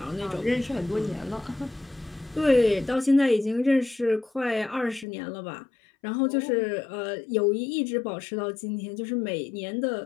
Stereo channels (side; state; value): right; drops out; at 5.1 s